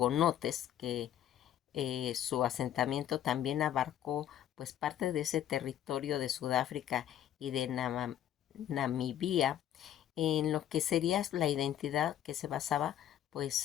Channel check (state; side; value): quieter; right; 11.0 dB